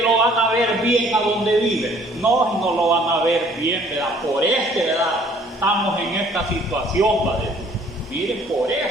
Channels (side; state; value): both; normal; correlation 0.58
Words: van a ver bien a donde vive? No lo van a ver bien, ¿verdad? Por ¿verdad?, estamos en esta situación, ¿verdad? Miren, por